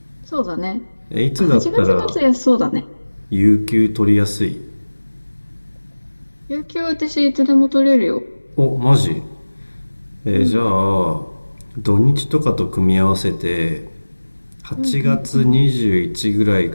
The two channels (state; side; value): inverted; both; correlation -1.00